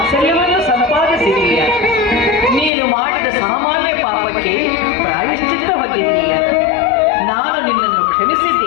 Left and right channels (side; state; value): right; drops out; at 2.7 s